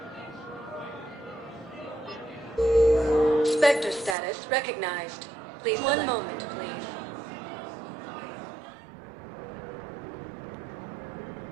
Spectre status recognized. Please one moment, please.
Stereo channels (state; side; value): drops out; left; at 4.2 s